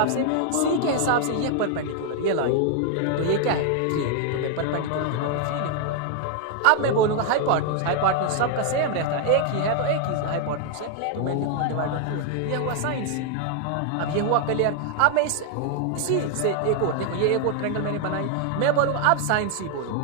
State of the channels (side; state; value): both; different; correlation 0.00